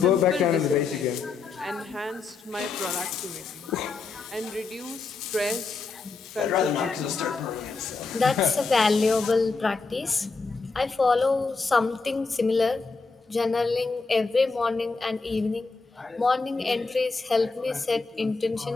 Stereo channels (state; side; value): quieter; right; 4.3 dB